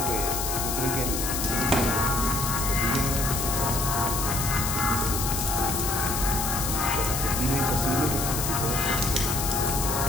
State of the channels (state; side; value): noise; left; hiss, 2 dB below the sound